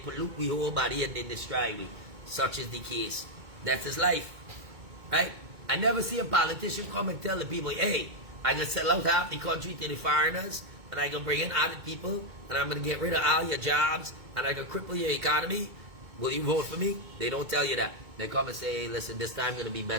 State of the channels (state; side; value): late; left; 2.2 ms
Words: we whole body and they destroy we. Such is the case. That's his life. Right? I never see a politician come and tell the people, hey, I'm going to sell out half the country to the foreigners, and I'm going to bring in other people, and I'm going to get rid of all your jobs, and I'm going to cripple your economy. Will you vote for me? They don't tell you that. They come and say, hey, listen, this time going to be